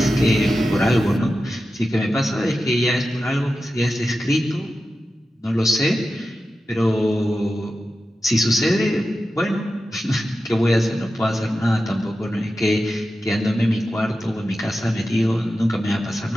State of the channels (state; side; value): normal; both; correlation 0.92